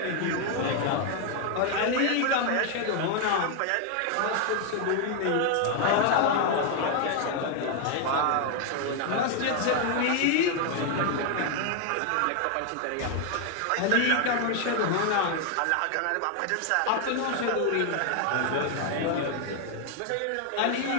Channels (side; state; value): both; different; correlation 0.00